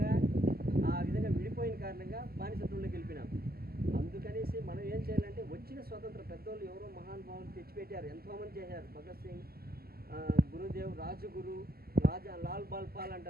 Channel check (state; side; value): late; left; 0.45 ms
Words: ఆ విధంగా విడిపోయిన కారణంగా బానిసత్వంలోకి వెళ్ళిపోయినాం. అందుకనేసి మనం ఏం చేయాలంటే వచ్చిన స్వతంత్ర పెద్దోళ్ళు ఎవరో మహానుభావులు తెచ్చిపెట్టారు, ఎంతోమంది చేశారు. భగత్ సింగ్, గురుదేవ్, రాజగురు, లాల్ బాల్ పాల్